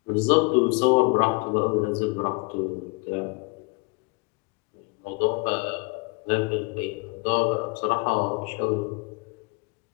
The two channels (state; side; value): quieter; right; 28.1 dB